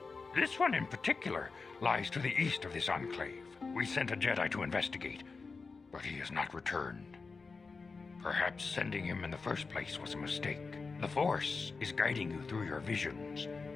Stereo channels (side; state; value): right; quieter; 4.4 dB